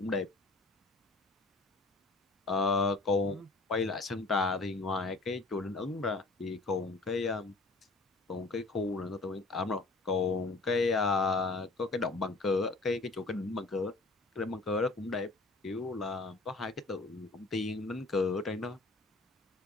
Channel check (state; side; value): quieter; right; 3.5 dB